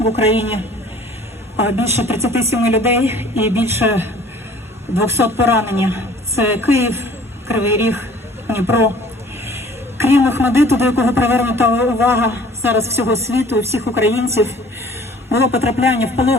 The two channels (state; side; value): normal; both; correlation 0.51